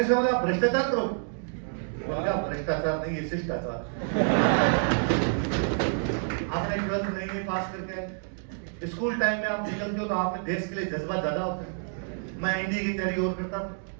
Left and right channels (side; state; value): left; silent; 59 dB below the other